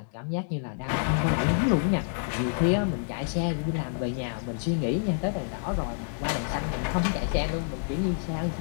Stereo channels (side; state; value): right; silent; digital silence